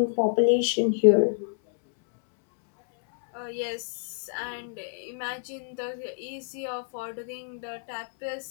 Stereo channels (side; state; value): right; silent; 59 dB below the other